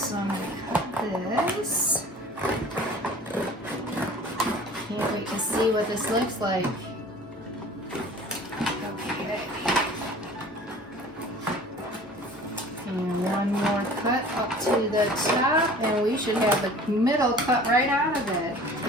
I'm gonna cut this. Can't wait to see what this looks like. Okay. And one more cut up to the top, and we should have the middle cut right out of it.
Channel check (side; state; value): both; normal; correlation 0.45